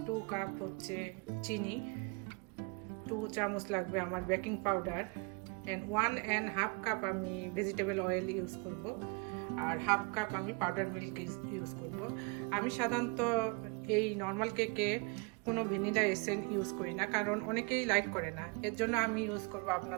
2 কাপ হচ্ছে চিনি, 2 চামচ লাগবে আমার বেকিং পাউডার, অ্যান্ড 1.5 কাপ আমি ভেজিটেবল অয়েল ইউজ করব, আর 1/2 কাপ আমি পাউডার মিল্ক ইউজ করব। আমি সাধারণত এই নর্মাল কেকে কোনো ভ্যানিলা এসেন্স ইউজ করি না, কারণ অনেকেই লাইক করে না। এর জন্য আমি ইউজ করব,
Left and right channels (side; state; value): left; quieter; 31.3 dB